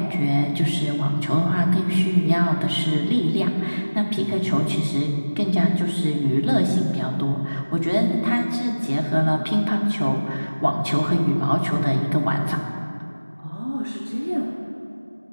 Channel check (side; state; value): both; inverted; correlation -1.00